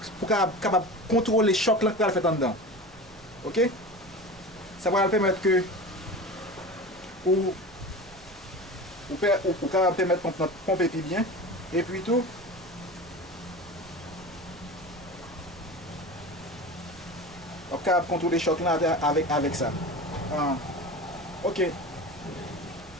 pour capable contrôler le choc là qu'il fait en dedans. OK? Ça va permettre que pour permettre de pomper plus bien. Et puis tout, on peut contrôler choc là avec ça. Ok.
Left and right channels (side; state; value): right; noise; rumble, 23 dB below the sound